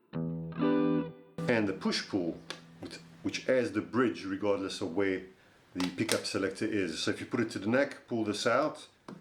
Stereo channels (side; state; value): both; identical; correlation 1.00